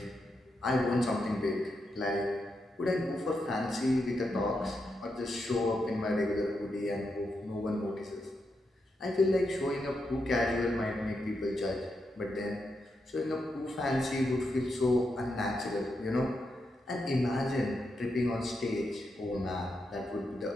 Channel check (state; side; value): normal; both; correlation 0.84